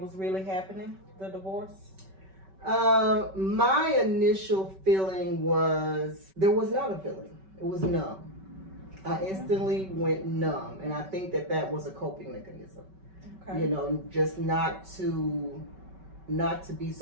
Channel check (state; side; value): late; left; 5.2 ms